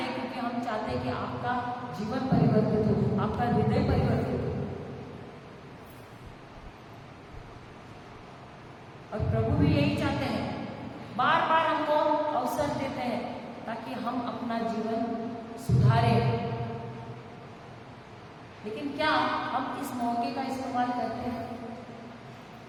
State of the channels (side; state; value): both; identical; correlation 1.00